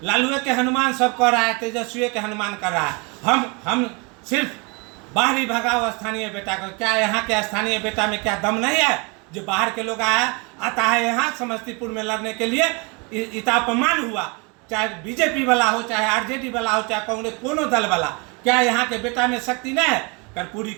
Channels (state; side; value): quieter; left; 30.5 dB